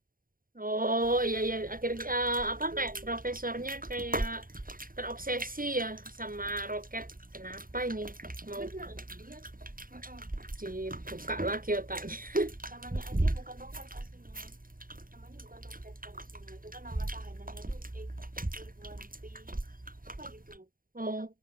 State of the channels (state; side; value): late; left; 0.41 ms